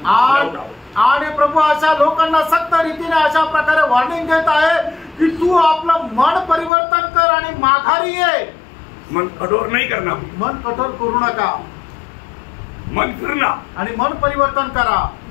आणि प्रभू अशा लोकांना सक्त रीतीने अशा प्रकारे वॉर्निंग देत आहे की तू आपलं मन परिवर्तन कर आणि माघारी ये. मन कठोर नहीं करना, मन कठोर करू नका, मन फिरना आणि मन परिवर्तन करा.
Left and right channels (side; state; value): right; drops out; at 6.7 s